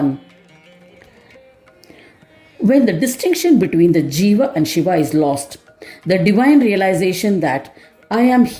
When the distinction between the Jiva and Shiva is lost, the divine realization that I am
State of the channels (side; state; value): both; identical; correlation 1.00